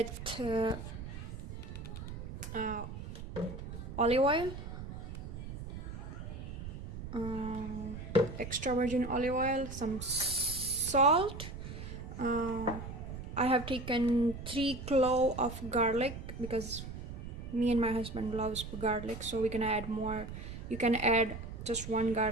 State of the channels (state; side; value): noise; right; rumble, 9 dB below the sound